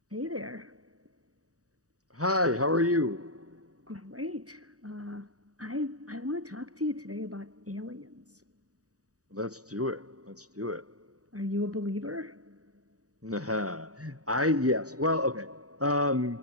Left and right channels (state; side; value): late; left; 0.66 ms